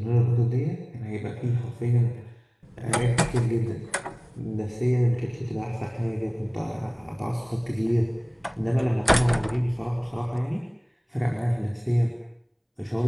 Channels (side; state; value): both; identical; correlation 1.00